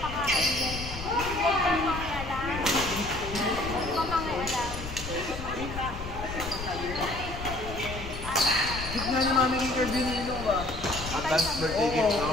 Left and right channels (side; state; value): left; noise; rumble, 9 dB below the sound